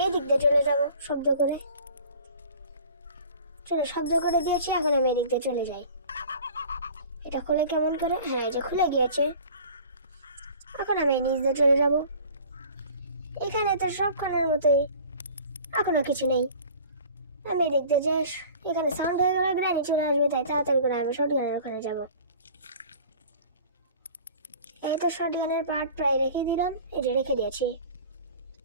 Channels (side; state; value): both; inverted; correlation -0.45